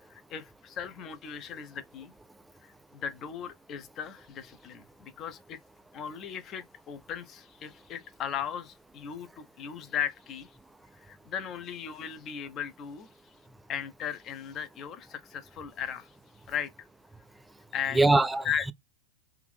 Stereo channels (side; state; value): both; normal; correlation 0.71